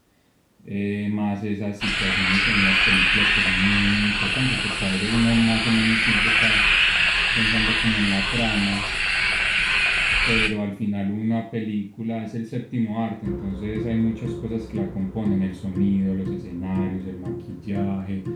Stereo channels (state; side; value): identical; both; correlation 1.00